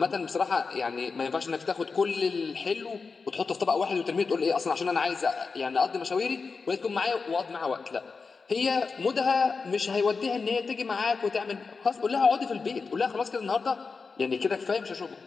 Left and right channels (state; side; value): quieter; right; 4.7 dB